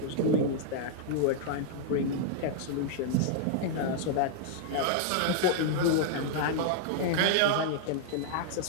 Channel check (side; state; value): both; different; correlation -0.01